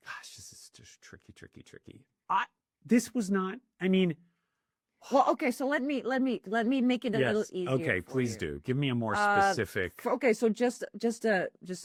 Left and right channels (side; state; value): both; identical; correlation 1.00